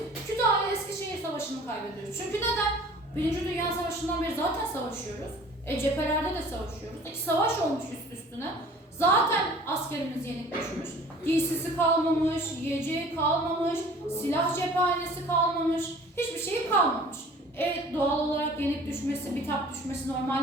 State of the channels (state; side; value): normal; both; correlation 0.48